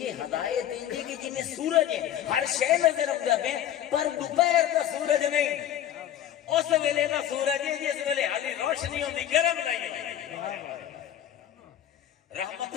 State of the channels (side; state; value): right; quieter; 11.1 dB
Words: ہدایت انجے کہ جی میں سورج ہے، ہر شے نظر آندا پے پر دوپہر دا سورج نہیں، اس ویلے دا سورج ہے جس ویلے حالی روشنی ہوندی گرم نہیں ہوندی۔ رحمت